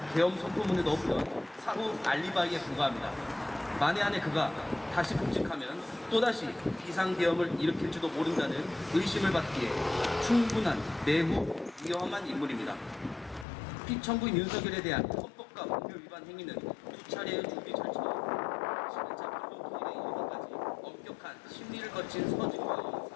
계엄 선포문에 넣었던 사후 알리바이에 불과합니다. 만에 안에 그가 다시 복직하면 또다시 비상계엄을 일으킬지도 모른다는 의심을 받기에 충분한 매우 위험한 인물입니다. 피청구인 윤석열에 대한 헌법과 법률 위반 행위는 두 차례의 준비 절차와 11차 불법행위에 이르기까지 엄격한 심리를 거친 서증과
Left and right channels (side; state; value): right; drops out; at 13.5 s